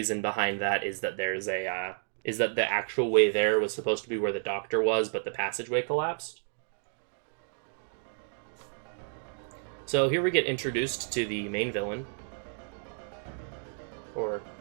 behind that is that there's a, is that the actual way there was supposed to be where the doctor was, but the passageway collapsed. So here we get introduced to the main villain. Or,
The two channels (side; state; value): left; silent; digital silence